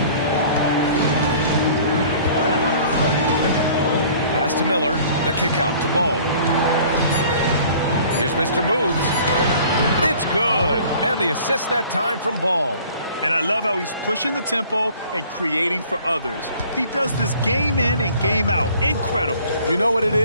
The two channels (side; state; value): both; inverted; correlation -0.51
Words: Pass to Miller, the kick out to Ball. Here's Mr. Moves. It's good, and the assist that time from Ball. And I love how he's pushing the tempo and creating for others. He does this game in and game out. Incredible. You know what it